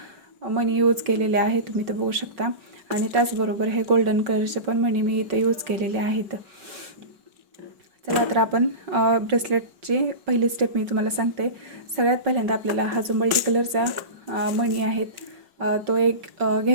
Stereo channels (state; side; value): late; left; 5.3 ms